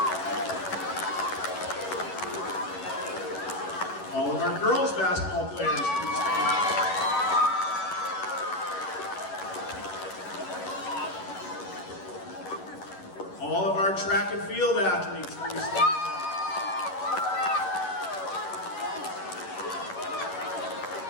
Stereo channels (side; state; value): right; late; 11 ms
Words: All of our girls basketball players, please stand up. All of our track and field athletes, please stand up.